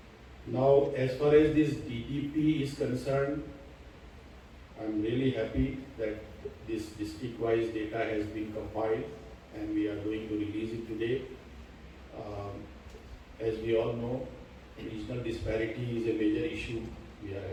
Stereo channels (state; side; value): identical; both; correlation 1.00